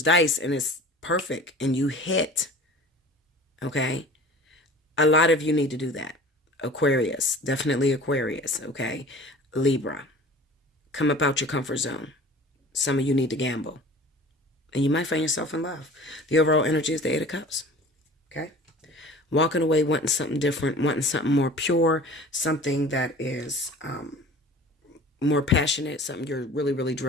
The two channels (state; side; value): normal; both; correlation 0.43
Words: dice and it's perfect and you hit. Okay? A lot of you need to do that. Aquarius, definitely Aquarius, okay? Libra, come up out your comfort zone. Some of you need to gamble. And you might find yourself in love. The overall energy is the Eight of Cups, okay? Walking away, wanting something different, wanting something more pure, something that is more passionate, something you're really, really